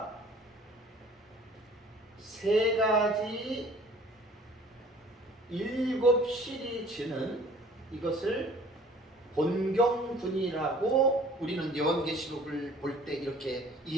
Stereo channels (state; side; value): normal; both; correlation 0.51